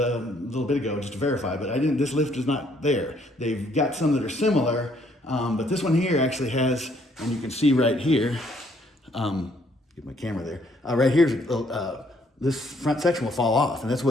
little bit ago just to verify, but this lift is not there. They've got some that are similar. But this one here actually has, and you can see right here, get my camera there, right here, this front section will fall off, and that's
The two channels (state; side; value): normal; both; correlation 0.67